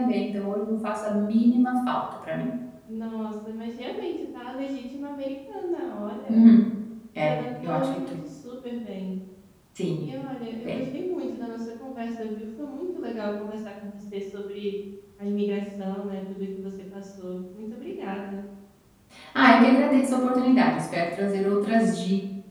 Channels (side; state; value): both; identical; correlation 1.00